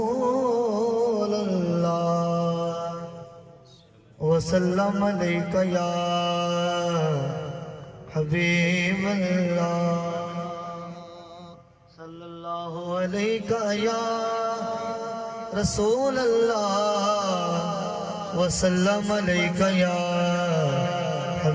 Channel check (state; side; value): identical; both; correlation 1.00